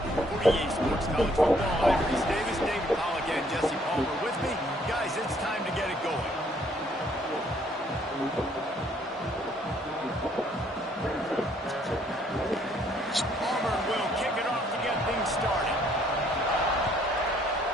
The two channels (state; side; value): normal; both; correlation 0.65